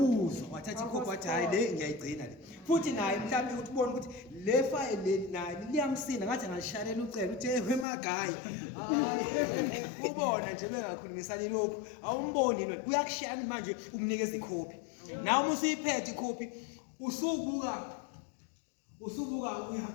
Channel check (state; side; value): drops out; right; at 7.9 s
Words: wathatha ikhophi wathi hayi le ngiyayigcina le. Futhi naye mhlawumbe ukuthi ubone ukuthi le file naye liyamsinda ngathi angashalela ucela uthi hey magayi. Ubona nje bengakhulumisani lokho awumboni yini uyakushaya manje umnikeza ikhophi. Nawe uma usuyiphethe ikhophi usubuka